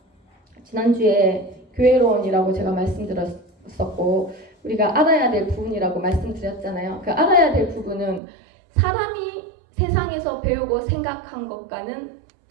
지난주에 교회론이라고 제가 말씀드렸었고 우리가 알아야 될 부분이라고 말씀드렸잖아요. 그 알아야 될 부분은 사람이 세상에서 배우고 생각한 것과는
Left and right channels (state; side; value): drops out; left; at 8.2 s